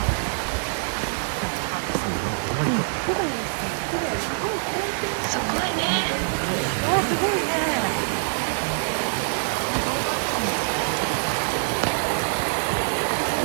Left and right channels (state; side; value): silent; left; digital silence